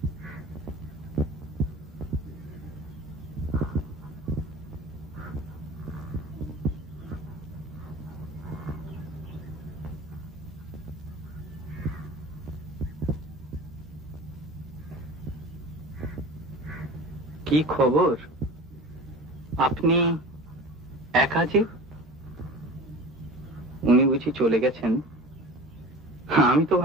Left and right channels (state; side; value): normal; both; correlation 0.37